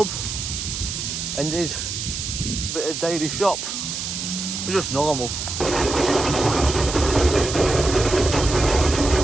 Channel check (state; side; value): noise; right; hiss, 5 dB below the sound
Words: and did a bit of daily shop. We're just normal.